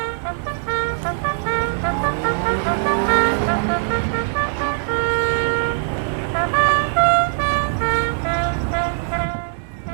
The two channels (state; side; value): silent; left; 60 dB below the other